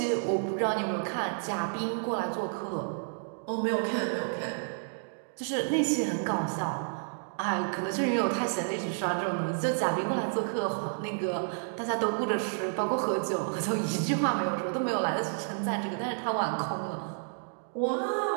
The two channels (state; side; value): silent; left; digital silence